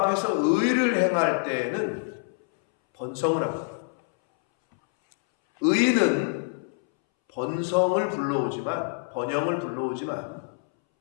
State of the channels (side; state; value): right; silent; 61 dB below the other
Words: 의를 행할 때에는 번성을 합니다. 의는 번성을 불러오지만 번영을 불러오지만